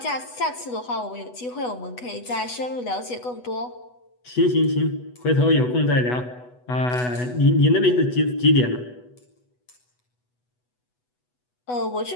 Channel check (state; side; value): late; right; 8.1 ms